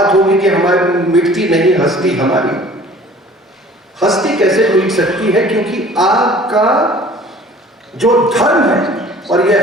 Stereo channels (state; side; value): normal; both; correlation 0.49